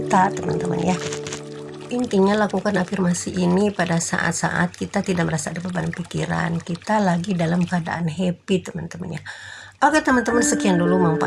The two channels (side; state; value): both; identical; correlation 1.00